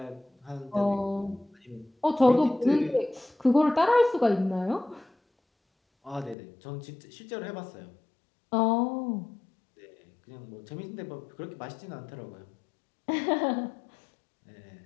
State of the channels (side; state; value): right; drops out; at 6.4 s